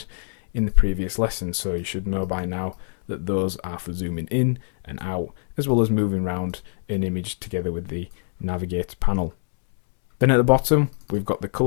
in the previous lesson, so you should know by now that those are for zooming in and out, as well as moving around an image together with the navigator panel. Then at the bottom we've got the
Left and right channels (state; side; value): silent; right; digital silence